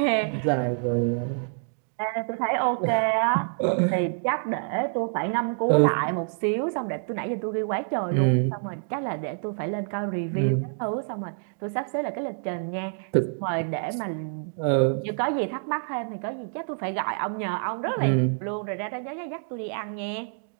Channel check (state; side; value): silent; left; digital silence